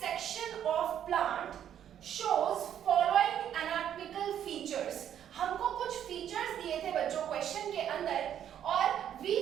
section of plant shows following anatomical features। हमको कुछ फीचर्स दिए थे बच्चों क्वेश्चन के अंदर, और we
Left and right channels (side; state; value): left; quieter; 9.9 dB